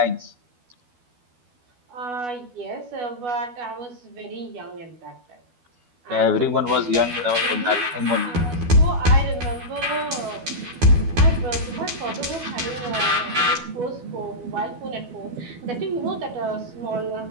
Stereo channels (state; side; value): late; left; 12 ms